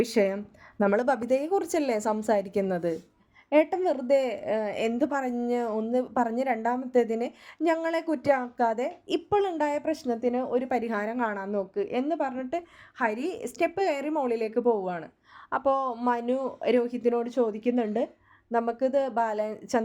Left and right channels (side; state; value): both; identical; correlation 1.00